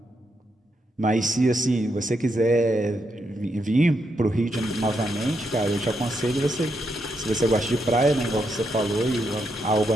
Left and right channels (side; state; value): both; normal; correlation 0.81